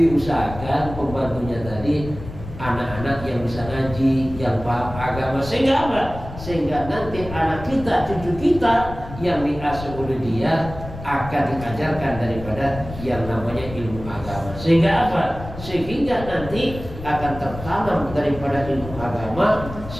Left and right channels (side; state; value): left; noise; rumble, 12 dB below the sound